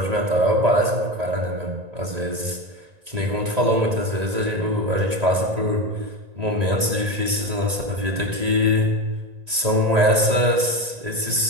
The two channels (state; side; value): late; left; 1.9 ms